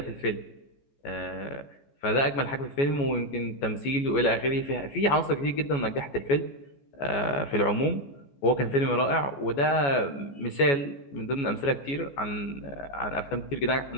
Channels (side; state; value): right; late; 14 ms